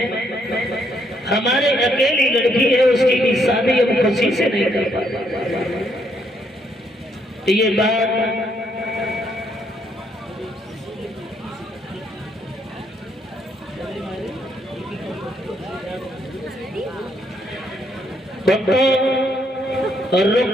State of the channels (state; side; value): normal; both; correlation 0.72